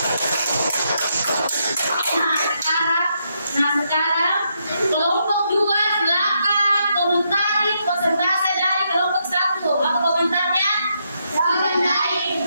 Nah sekarang kelompok 2 silakan komentari persentase dari kelompok 1. Apa komentarnya?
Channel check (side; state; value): both; inverted; correlation -0.79